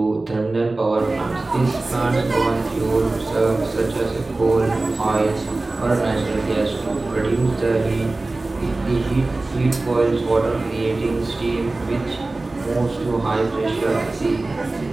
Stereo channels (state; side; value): quieter; left; 3.1 dB